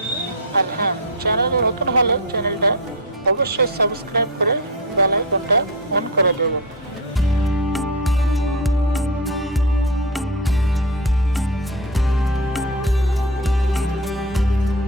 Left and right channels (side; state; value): both; normal; correlation 0.17